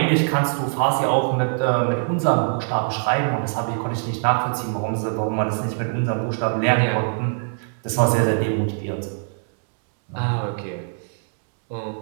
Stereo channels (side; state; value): left; silent; digital silence